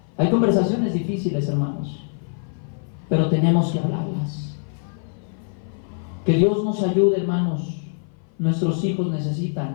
Hay conversaciones difíciles, hermanos, pero tenemos que hablarlas. Que Dios nos ayude, hermanos. Nuestros hijos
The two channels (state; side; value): silent; right; 57 dB below the other